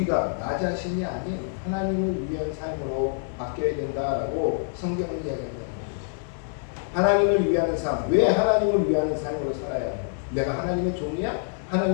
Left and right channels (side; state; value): right; silent; 61 dB below the other